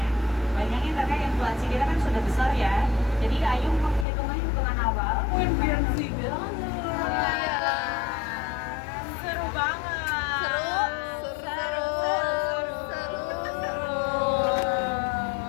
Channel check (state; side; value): drops out; right; at 4.0 s